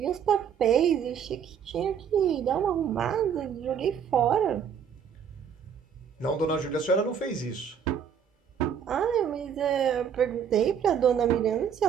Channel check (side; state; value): left; quieter; 7.7 dB